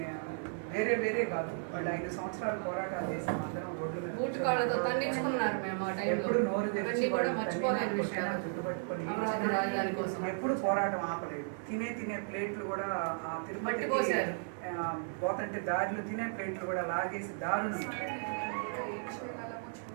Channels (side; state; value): left; silent; 55 dB below the other